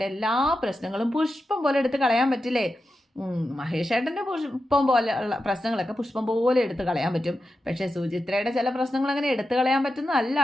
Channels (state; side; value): normal; both; correlation 0.90